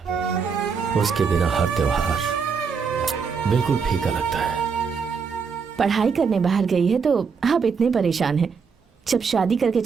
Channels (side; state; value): left; quieter; 5.8 dB